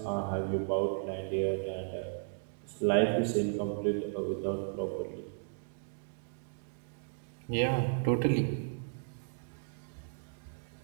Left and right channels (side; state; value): left; silent; digital silence